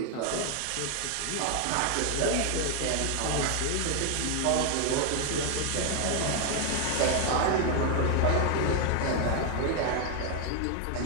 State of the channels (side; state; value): both; different; correlation 0.01